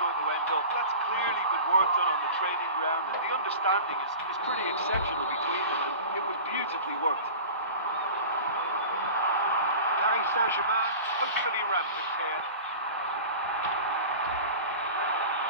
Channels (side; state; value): both; inverted; correlation -0.36